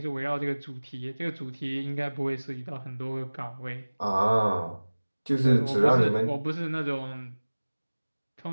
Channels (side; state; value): both; inverted; correlation -1.00